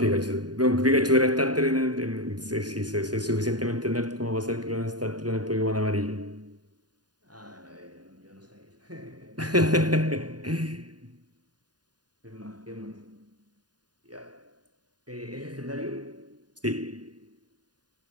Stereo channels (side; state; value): left; late; 0.69 ms